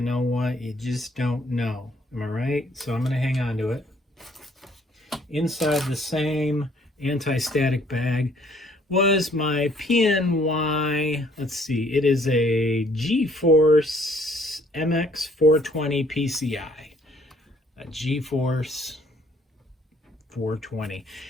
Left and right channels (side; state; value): both; normal; correlation 0.63